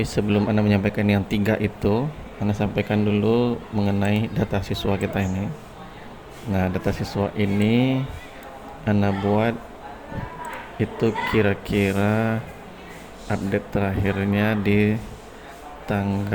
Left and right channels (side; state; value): both; identical; correlation 1.00